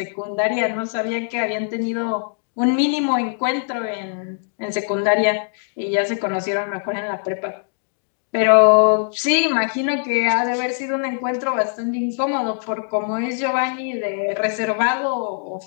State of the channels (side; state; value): right; silent; digital silence